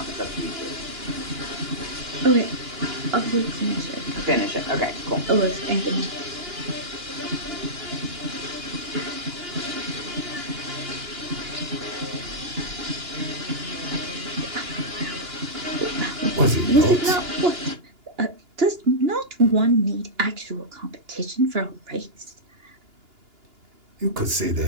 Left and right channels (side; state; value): left; late; 2.9 ms